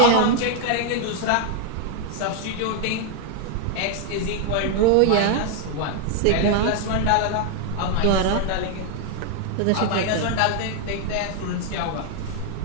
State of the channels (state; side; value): different; both; correlation 0.00